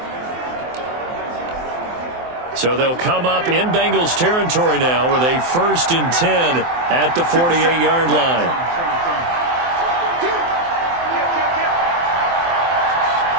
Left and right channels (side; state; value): left; late; 23 ms